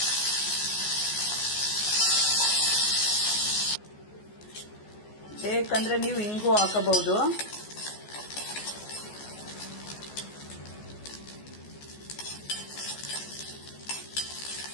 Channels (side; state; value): right; late; 14 ms